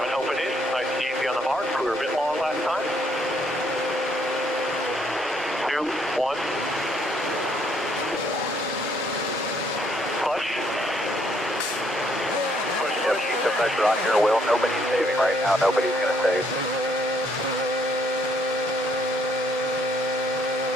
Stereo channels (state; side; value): normal; both; correlation 0.68